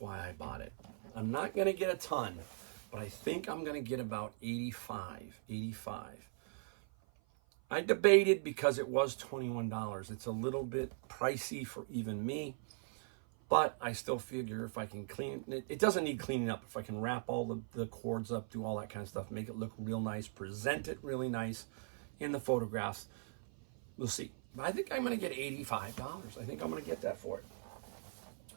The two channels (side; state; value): left; silent; 51 dB below the other